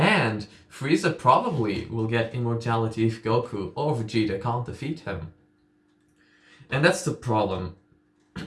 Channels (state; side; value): identical; both; correlation 1.00